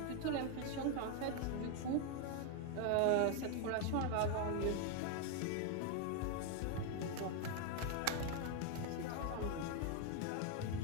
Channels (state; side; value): different; both; correlation 0.01